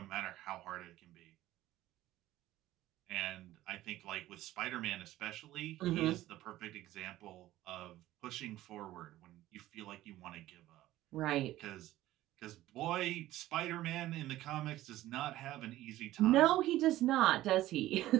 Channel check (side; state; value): left; quieter; 15.3 dB